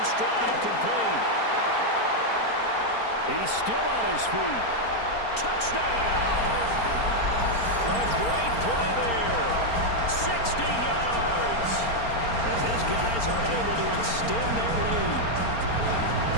stride, complete. He's still on his feet. Touchdown! A great play there. 60 yards. As his guys are able to extend their lead.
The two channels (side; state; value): right; late; 4.3 ms